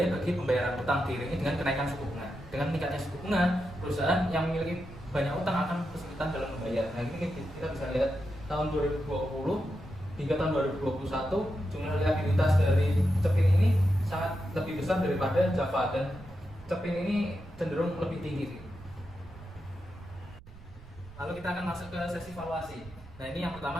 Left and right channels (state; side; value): noise; right; rumble, 19 dB below the sound